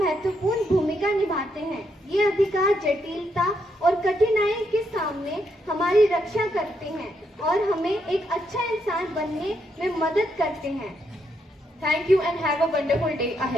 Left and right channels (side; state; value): both; normal; correlation 0.78